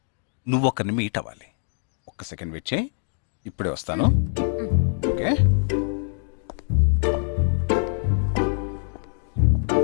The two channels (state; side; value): silent; right; digital silence